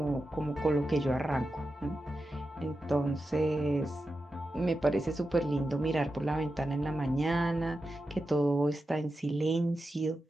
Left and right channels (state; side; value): normal; both; correlation 0.90